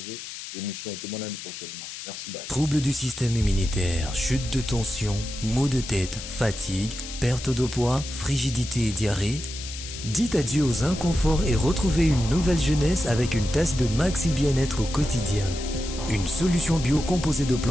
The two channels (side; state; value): left; noise; hiss, 10 dB below the sound